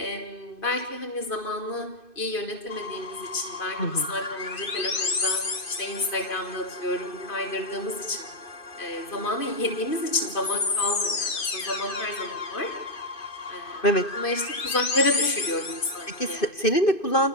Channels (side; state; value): right; late; 2.5 ms